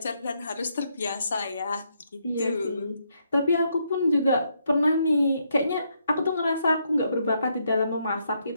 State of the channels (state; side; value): inverted; both; correlation -0.76